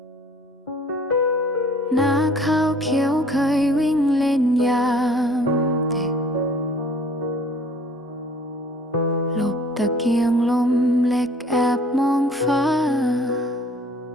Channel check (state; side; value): normal; both; correlation 0.53